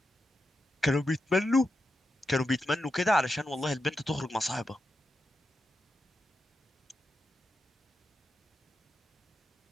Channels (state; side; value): normal; both; correlation 0.88